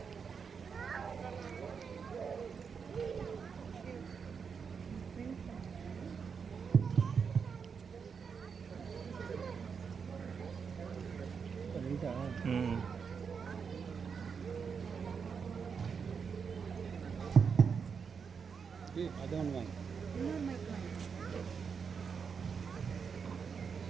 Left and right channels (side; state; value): left; quieter; 6.1 dB